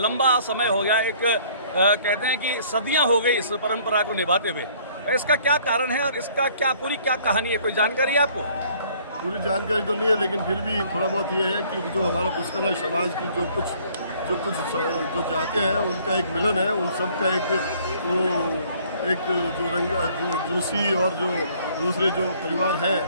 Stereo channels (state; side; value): inverted; both; correlation -0.58